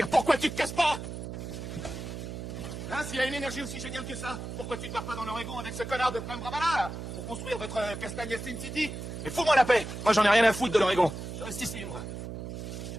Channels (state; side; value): noise; right; hum, 8 dB below the sound